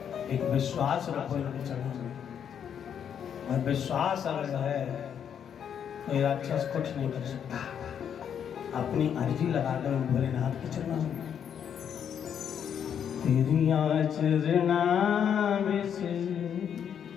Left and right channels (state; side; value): quieter; right; 8.4 dB